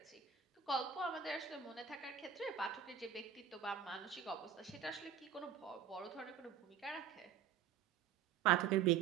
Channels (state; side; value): quieter; left; 8.2 dB